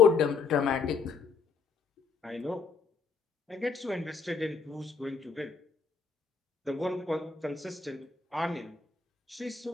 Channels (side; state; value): right; quieter; 5.1 dB